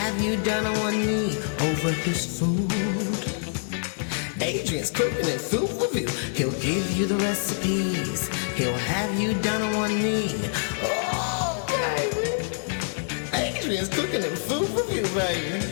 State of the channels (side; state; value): right; silent; digital silence